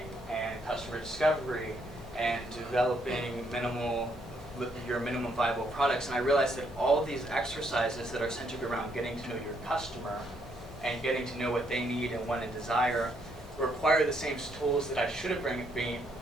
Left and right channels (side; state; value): both; normal; correlation 0.72